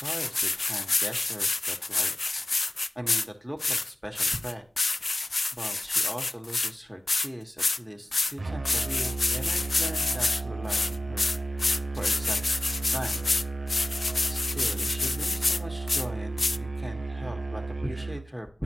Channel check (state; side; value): normal; both; correlation 0.97